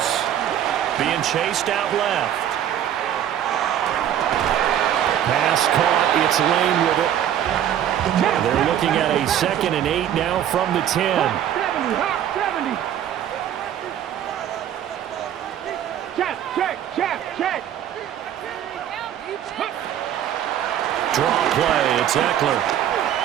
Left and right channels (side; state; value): left; quieter; 10.5 dB